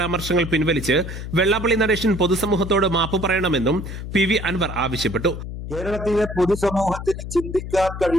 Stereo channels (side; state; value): left; noise; hum, 8 dB below the sound